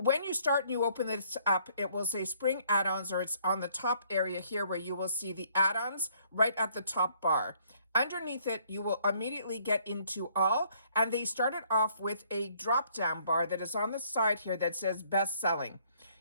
you start and you open this up, it will say spring add-ons, or it's on the top area here where you will see the add-ons right at the top bar. Underneath it, you will immediately get into all, and they started off with a drop-down bar that is on the side here that says best selling.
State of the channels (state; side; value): inverted; both; correlation -0.64